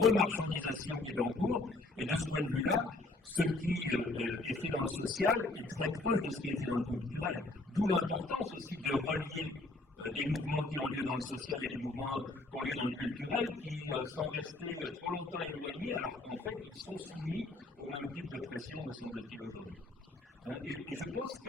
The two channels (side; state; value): right; quieter; 3.1 dB